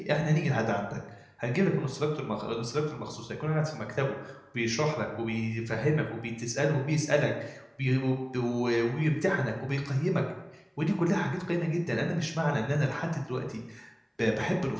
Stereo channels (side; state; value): both; identical; correlation 1.00